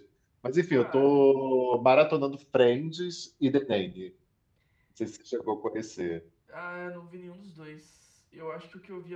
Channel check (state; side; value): identical; both; correlation 1.00